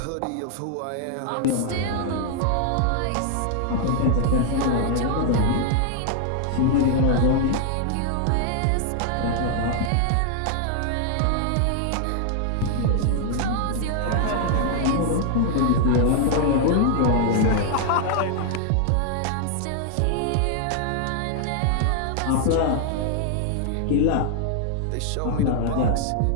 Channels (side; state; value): both; different; correlation 0.00